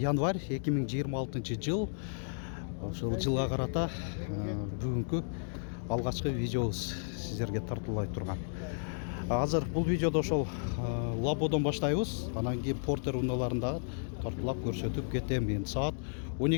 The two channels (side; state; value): right; silent; digital silence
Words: 2026 жыл. Ошол жылга карата бүгүнкү алгачкы видеобуз сиздерге тартуулай турган. Азыр бул видеодо ошол Лабодон баштайбыз. Анан кийин Портер унааларында тартуулап көрсөтүп кетем. Эми саат